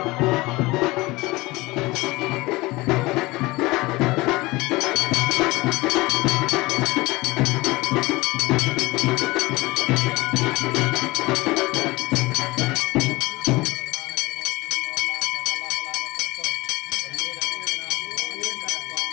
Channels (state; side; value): quieter; right; 21.5 dB